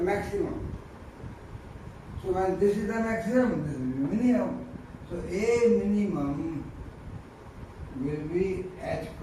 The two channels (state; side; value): identical; both; correlation 1.00